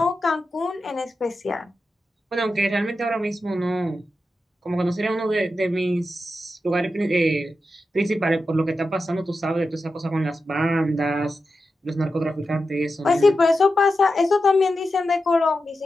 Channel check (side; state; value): both; normal; correlation 0.90